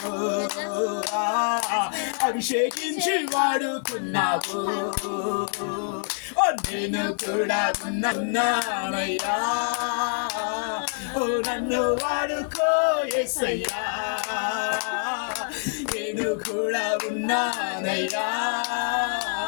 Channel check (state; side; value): silent; right; 61 dB below the other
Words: అభిషేకించి వాడుకున్నావు. నేను కూడా ఉన్నానయ్యా, నన్ను వాడుకో యేసయ్యా. నేను కూడా ఉన్నానయ్యా,